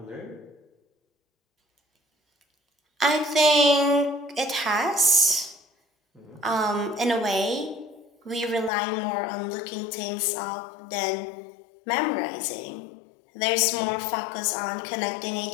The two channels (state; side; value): drops out; right; at 8.7 s